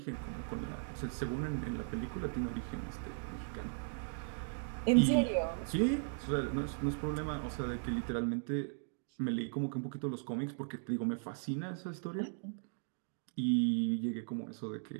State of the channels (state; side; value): silent; left; digital silence